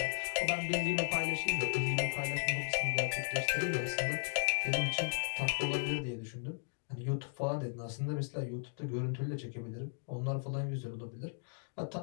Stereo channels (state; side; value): silent; right; digital silence